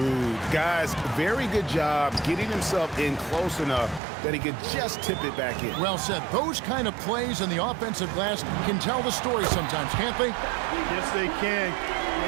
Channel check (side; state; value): left; drops out; at 4.0 s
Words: Guys, very good job getting himself in close enough that he could just tip it back in. Well said. Those kind of plays in the offensive glass can tell the story sometimes, can't they? Yes, they can.